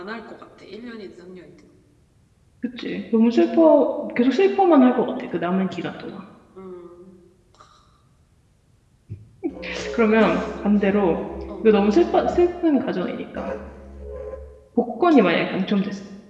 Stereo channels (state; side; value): identical; both; correlation 1.00